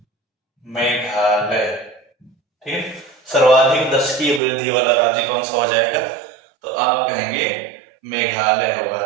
मेघालय। ठीक है, सर्वाधिक दशकीय वृद्धि वाला राज्य कौन सा हो जाएगा? तो आप कहेंगे मेघालय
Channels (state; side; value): drops out; left; at 4.4 s